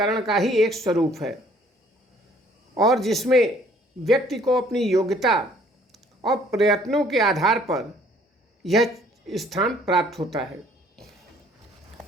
का ही एक स्वरूप है, और जिसमें व्यक्ति को अपनी योग्यता और प्रयत्नों के आधार पर यह स्थान प्राप्त होता है।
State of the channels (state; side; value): normal; both; correlation 0.59